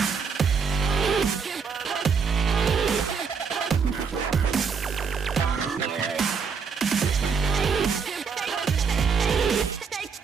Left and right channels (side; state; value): left; quieter; 5.9 dB